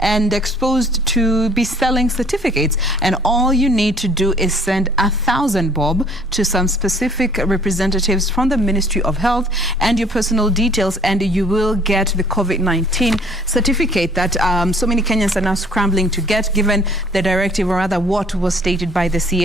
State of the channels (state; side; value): normal; both; correlation 0.56